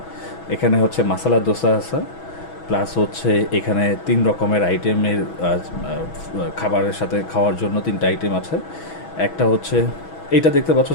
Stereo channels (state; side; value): late; right; 6.2 ms